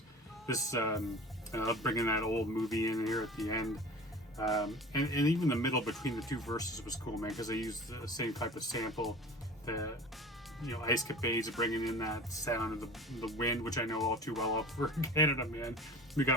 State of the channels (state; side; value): normal; both; correlation 0.39